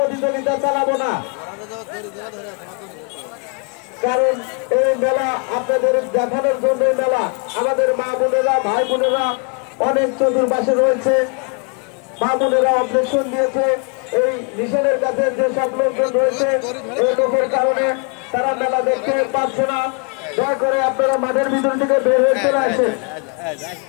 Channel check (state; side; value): quieter; right; 37.6 dB